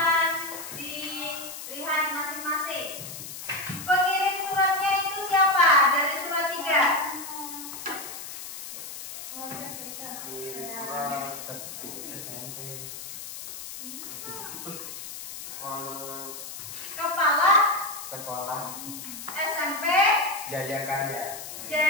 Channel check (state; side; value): noise; left; hiss, 10 dB below the sound